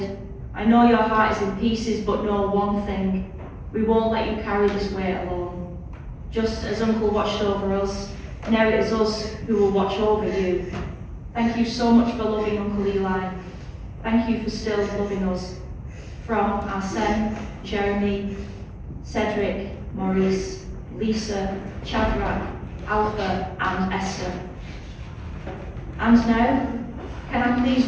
I know your heart is in pieces, but know one thing. We won't let you carry this weight alone. Just as Uncle watched over us, now it is us who will watch over you. Thank you so much for loving Uncle Eli. Thank you for still loving us. From Arsene, Jeremy, Cedric, Maurice, Lisa, Shadrach, Alpha and Esther. And now, can I please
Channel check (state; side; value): identical; both; correlation 1.00